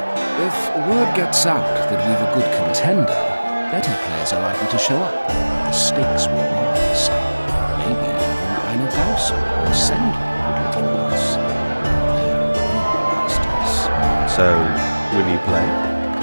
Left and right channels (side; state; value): both; inverted; correlation -1.00